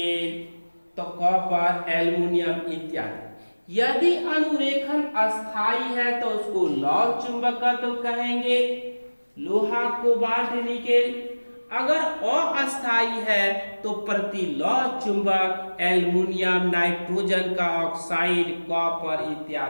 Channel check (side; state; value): both; inverted; correlation -1.00